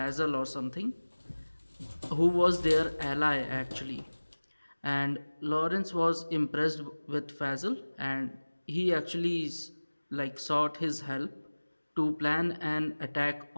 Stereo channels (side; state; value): both; inverted; correlation -1.00